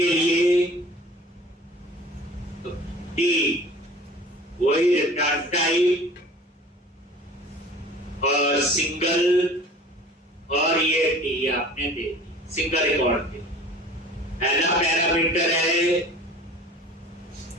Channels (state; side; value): normal; both; correlation 0.44